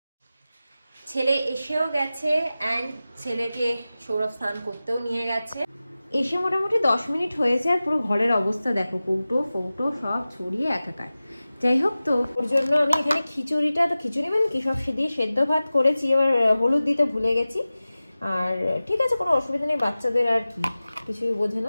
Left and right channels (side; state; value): both; inverted; correlation -0.96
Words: ছেলে এসেও গেছে অ্যান্ড ছেলেকে সৌরভ স্নান করতেও নিয়ে গেছে। এসে মোটামুটি 10 মিনিট হয়েছে আর পুরো ঘরের অবস্থা দেখো, কৌটো ফৌটো সব ছড়িয়ে একাকার। যাই হোক, তো ওর জন্য আমি এখানে খিচুড়িটা, তো খিচুড়ি মানে কি, সব দিয়ে সেদ্ধ ভাত করেছি, এবার হলুদ দিতে ভুলে গেছি। আর ঠিক আছে, কোনো অসুবিধা নেই, বাচ্চাদের আর কি কিছুই বোঝে